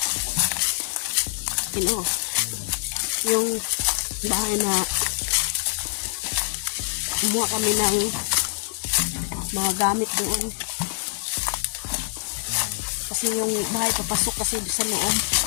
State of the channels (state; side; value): silent; right; digital silence